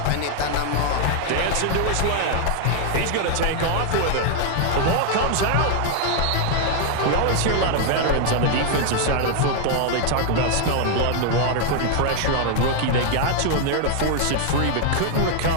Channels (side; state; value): both; different; correlation 0.00